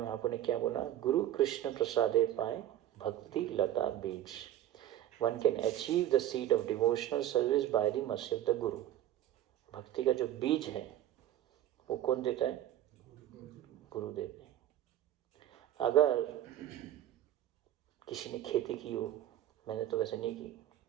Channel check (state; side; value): quieter; left; 12.6 dB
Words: ने क्या बोला, गुरु कृष्ण प्रसादे पाए भक्ति लता बीज, one can achieve the seed of devotional service by the mercy of the गुरु। भक्ति का जो बीज है वो कौन देता है, गुरु देते हैं। अगर किसी ने खेती की हो, मैंने तो वैसे नहीं की,